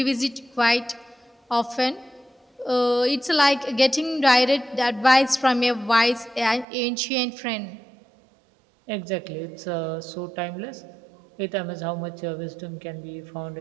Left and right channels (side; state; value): left; drops out; at 6.7 s